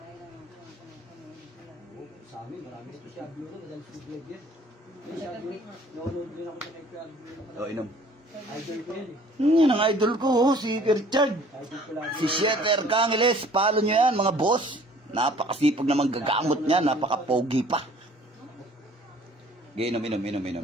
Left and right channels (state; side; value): normal; both; correlation 0.54